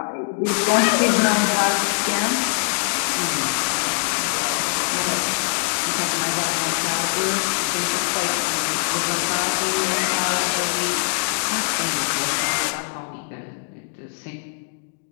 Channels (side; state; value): right; silent; digital silence